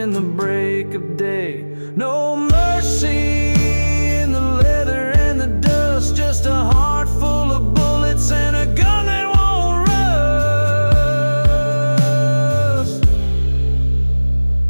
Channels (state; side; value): inverted; both; correlation -1.00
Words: the break of day. No mercy in the leather and the dust, just a heart full of bullets and a gun that won't rust.